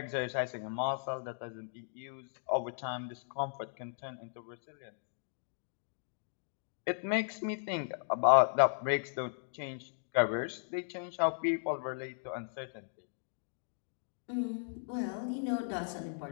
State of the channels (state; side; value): silent; right; digital silence